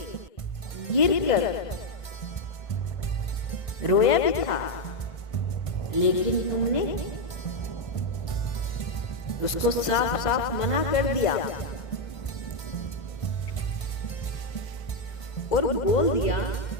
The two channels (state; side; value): late; right; 1.5 ms